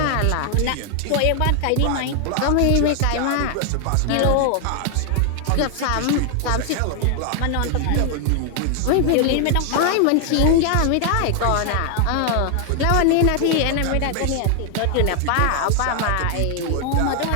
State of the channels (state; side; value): different; both; correlation 0.00